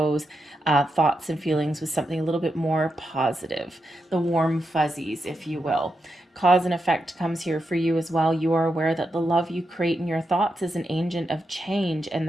thoughts and feelings with something a little bit more positive, the warm fuzzies, if you will. Cause and effect comes here for you as well. You are aware that the love you create in your thoughts is an agent of change and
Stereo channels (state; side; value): normal; both; correlation 0.86